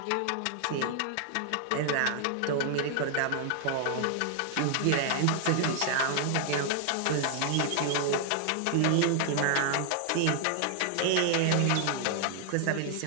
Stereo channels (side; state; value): both; different; correlation 0.00